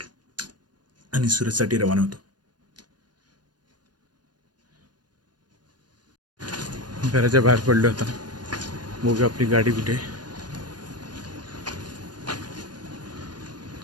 आणि सुरतसाठी रवाना होतो. घराच्या बाहेर पडलो आता. बघू आपली गाडी कुठे आहे.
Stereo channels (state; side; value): late; left; 0.70 ms